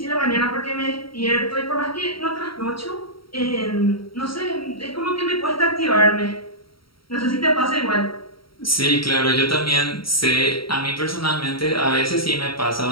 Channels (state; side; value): late; right; 0.74 ms